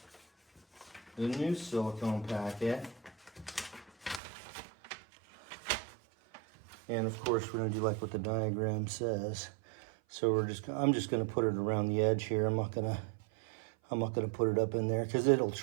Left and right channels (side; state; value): left; drops out; at 4.2 s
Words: the new silicone packet. And of course we're gonna do like what the diagram says. So I'm just gonna put it around the edge here. I'm not gonna put it up in there because it'll